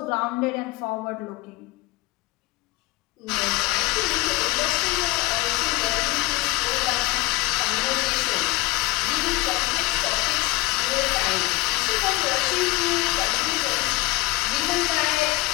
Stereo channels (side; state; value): right; quieter; 21.2 dB